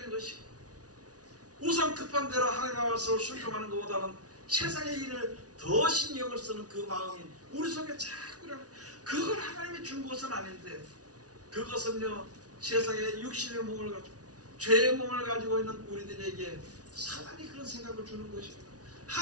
것이고, 우선 급한 대로 하나님의 말씀을 순종하는 것보다는 세상의 일을 더 신경을 쓰는 그 마음이 우리 속에 자꾸 일어나요. 그걸 하나님이 준 것은 아닌데, 그것은요 세상의 육신의 몸을 가지고 죄의 몸을 가지고 있는 우리들에게 사단이 그런 생각을 주는 것입니다.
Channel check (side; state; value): left; late; 0.68 ms